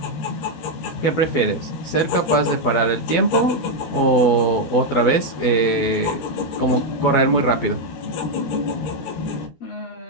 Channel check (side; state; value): right; late; 12 ms